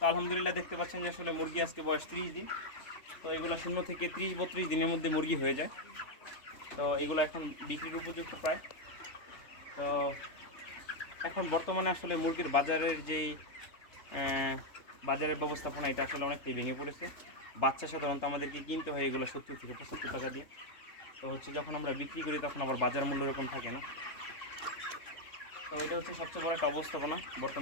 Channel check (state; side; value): late; right; 3.3 ms